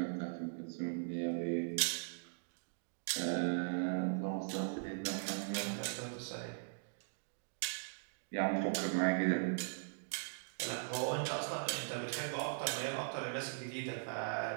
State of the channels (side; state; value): left; silent; digital silence